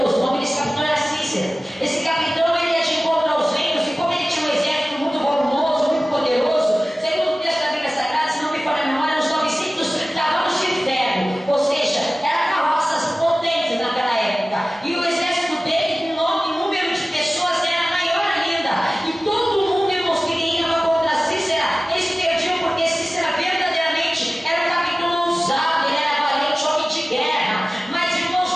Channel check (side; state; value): both; normal; correlation 0.97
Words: O nome desse capitão era Cícera. Esse capitão, ele ia de encontro aos reinos, e como ele tinha um exército muito volumoso, muito poderoso, segundo o texto da Bíblia Sagrada, se não me falha a memória, uns 900 cavalos de ferro, ou seja, eram carroças potentes naquela época. E o exército dele, em número de pessoas, era maior ainda. E todo mundo, irmãos, que ia contra Cícera, eles perdiam, porque Cícera verdadeiramente era um capitão ousado, ele era valente, homem de guerra. Mas,